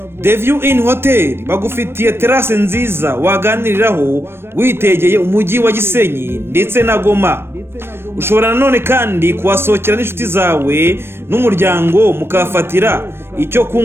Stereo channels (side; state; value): left; late; 0.12 ms